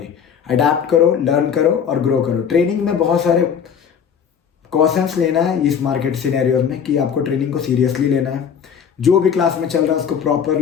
अडेप्ट करो, लर्न करो और ग्रो करो। ट्रेनिंग में बहुत सारे कॉशंस लेना है इस मार्केट सिनेरियोज में कि आपको ट्रेनिंग को सीरियसली लेना है। जो भी क्लास में चल रहा है उसको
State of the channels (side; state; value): right; quieter; 7.5 dB